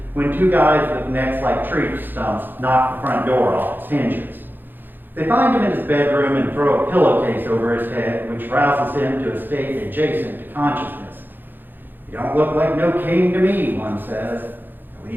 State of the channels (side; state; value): left; late; 0.092 ms